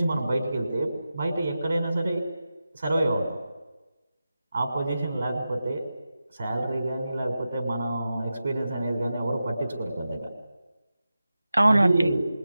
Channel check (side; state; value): both; inverted; correlation -0.92